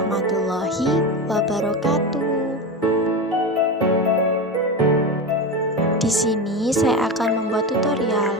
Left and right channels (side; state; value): both; normal; correlation 0.21